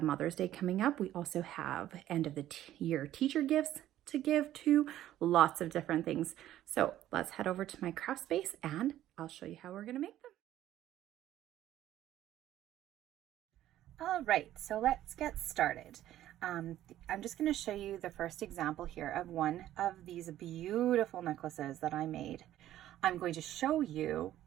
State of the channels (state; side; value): quieter; left; 13.0 dB